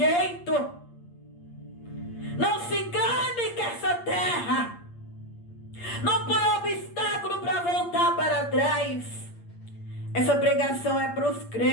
Não se engane que essa terra não põe obstáculo para voltar para trás. Essa pregação é para os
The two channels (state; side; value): late; right; 8.6 ms